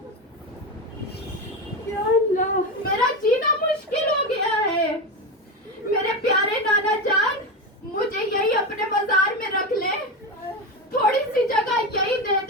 میرا جینا مشکل ہو گیا ہے. میرے پیارے نانا جان مجھے یہی اپنے بازار میں رکھ لے, تھوڑی سی جگہ یہی دے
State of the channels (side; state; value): both; normal; correlation 0.17